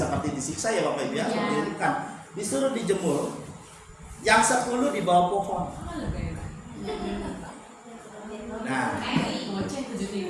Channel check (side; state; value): both; identical; correlation 1.00